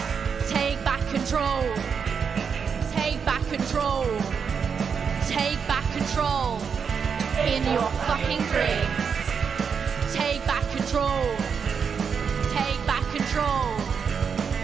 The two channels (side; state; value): left; quieter; 6.4 dB